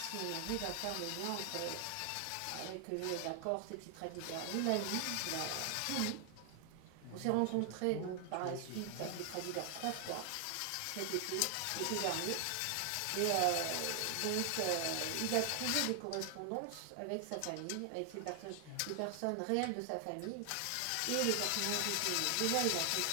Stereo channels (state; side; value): different; both; correlation 0.00